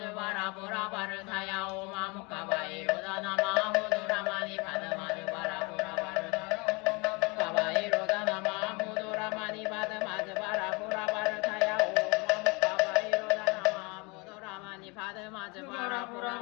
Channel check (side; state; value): right; quieter; 28.5 dB